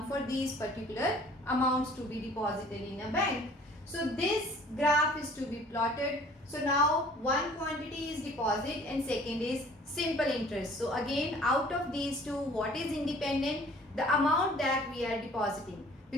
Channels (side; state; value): both; normal; correlation 0.52